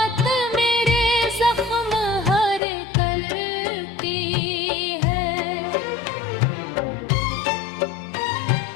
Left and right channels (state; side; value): drops out; right; at 2.6 s